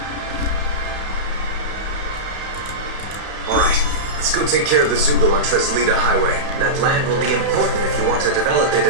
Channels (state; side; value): late; left; 32 ms